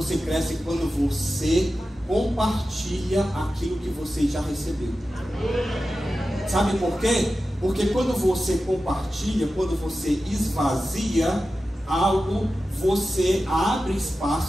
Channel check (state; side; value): normal; both; correlation 0.93